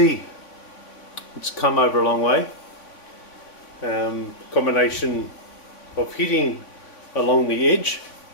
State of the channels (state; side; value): late; right; 3.5 ms